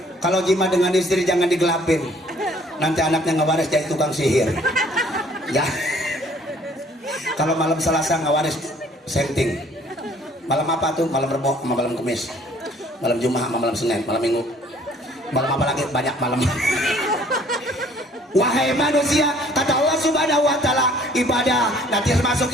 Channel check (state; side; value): normal; both; correlation 0.57